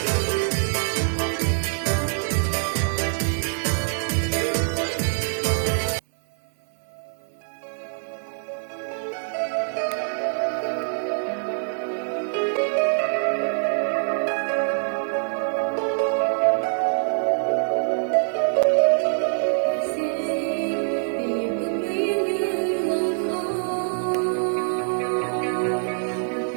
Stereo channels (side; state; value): left; silent; 62 dB below the other